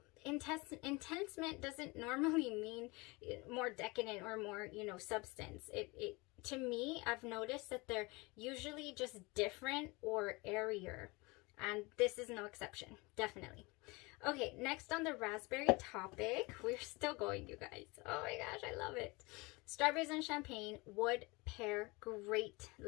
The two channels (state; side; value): quieter; right; 25.4 dB